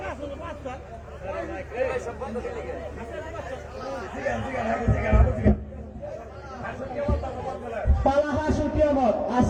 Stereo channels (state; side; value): identical; both; correlation 1.00